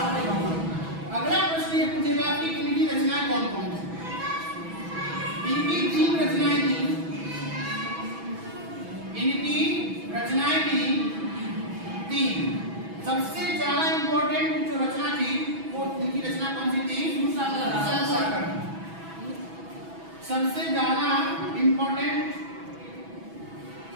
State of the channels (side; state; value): left; late; 6.1 ms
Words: गांव में। अगला प्रश्न ये पूछेगा कि इनकी रचनाएं कौन कौन सी? इनकी 3 रचनाएं थी। इनकी रचनाएं थी 3। सबसे ज्यादा इंपॉर्टेंट जो रचना थी वो इनकी रचना कौन सी थी? सूरसागर। सबसे ज्यादा इंपॉर्टेंट